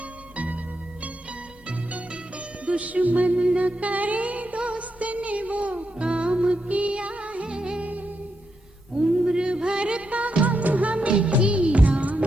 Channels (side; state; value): both; normal; correlation 0.83